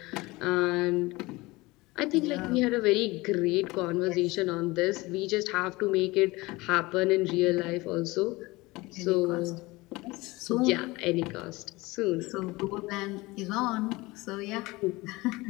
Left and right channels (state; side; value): quieter; right; 21.7 dB